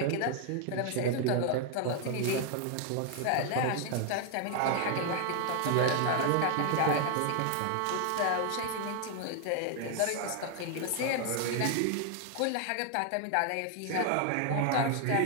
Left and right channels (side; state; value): both; different; correlation 0.00